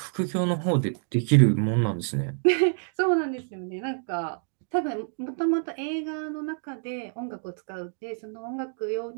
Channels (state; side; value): silent; left; digital silence